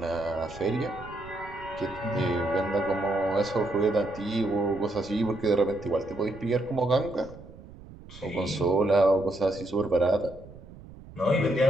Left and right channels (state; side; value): noise; right; rumble, 18 dB below the sound